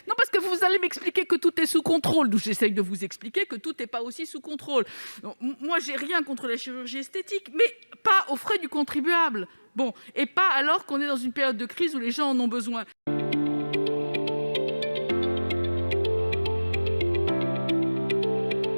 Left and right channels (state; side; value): inverted; both; correlation -1.00